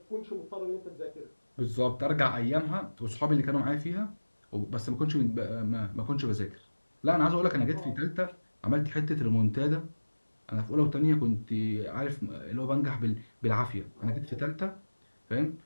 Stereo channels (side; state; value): both; inverted; correlation -1.00